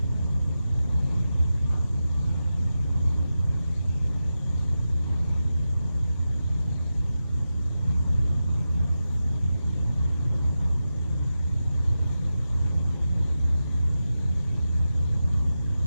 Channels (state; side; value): inverted; both; correlation -0.91